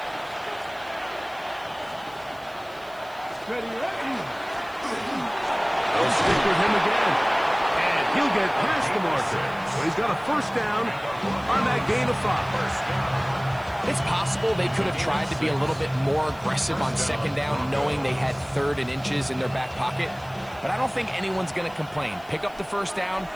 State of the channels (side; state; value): right; noise; hiss, 26 dB below the sound